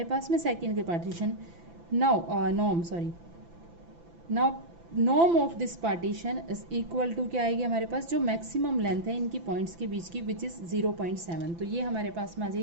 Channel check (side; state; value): left; late; 5.9 ms